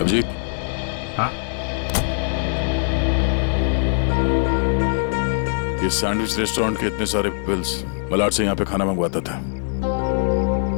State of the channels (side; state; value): right; silent; digital silence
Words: हाँ? ये सैंडविच रेस्टोरेंट के इतने सारे बिल्स मलाड से यहाँ पे खाना मंगवाता था।